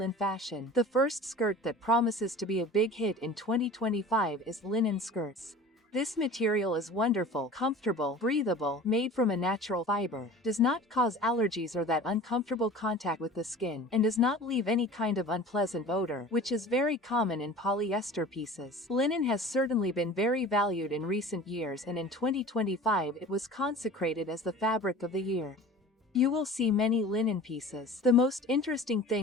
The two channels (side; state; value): both; normal; correlation 0.40